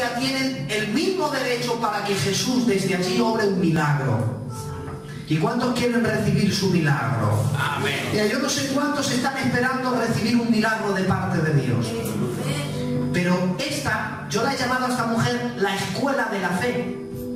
tienen el mismo derecho para que Jesús desde allí obre un milagro. ¿Y cuántos quieren recibir su milagro? Amén. Mira, yo no sé cuántos están esperando recibir un milagro de parte de Dios. Pero yo la he llamado a esta mujer la escuela de la fe.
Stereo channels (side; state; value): both; identical; correlation 1.00